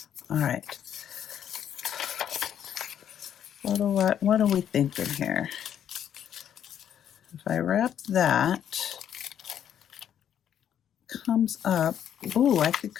All right. What are we thinking here? If I wrap that, comes up, ooh, I could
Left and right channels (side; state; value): right; quieter; 9.6 dB